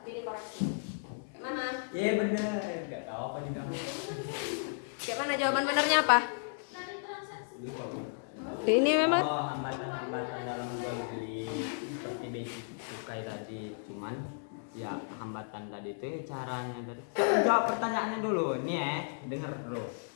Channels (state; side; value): silent; right; digital silence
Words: dikoreksi. Mana? Iya benar, nggak tahu apa juga. Kayak mana jawaban benernya apa? Ini memang hambatan dalam jual beli seperti basic cukai tadi, cuman ya hambatan tadi itu caranya tadi. Jawab pertanyaannya dulu nih denger dulu.